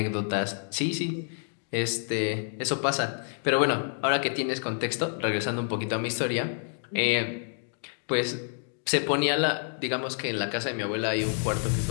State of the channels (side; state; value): right; silent; 59 dB below the other